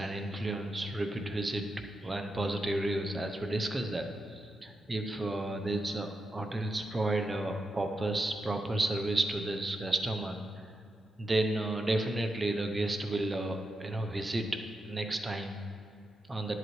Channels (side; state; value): both; normal; correlation 0.86